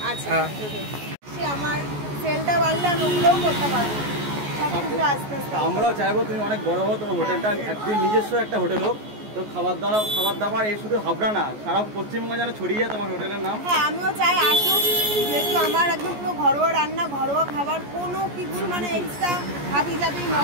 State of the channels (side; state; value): left; late; 14 ms